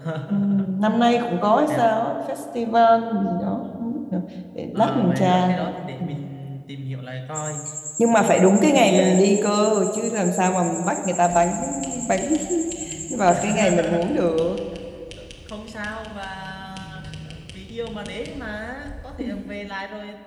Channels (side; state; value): both; identical; correlation 1.00